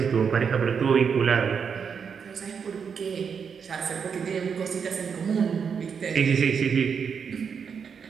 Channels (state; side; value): quieter; left; 6.6 dB